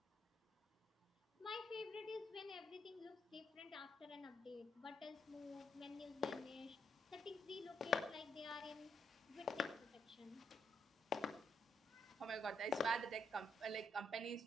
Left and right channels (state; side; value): normal; both; correlation 0.76